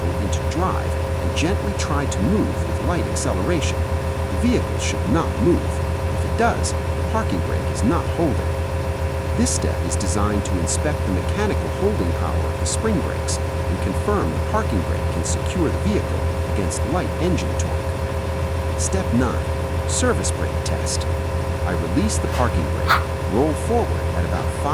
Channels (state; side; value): identical; both; correlation 1.00